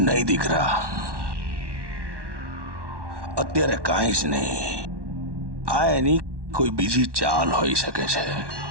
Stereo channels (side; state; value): left; late; 1.1 ms